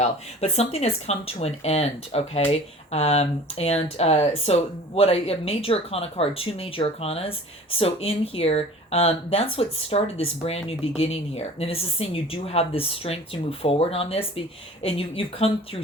But something has come to an end, okay? So what a major arcana card, two major arcanas. So in here, that's what started this brand new beginning here. And this is saying you do have this strength to move forward on this. And you've come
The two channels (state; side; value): normal; both; correlation 0.44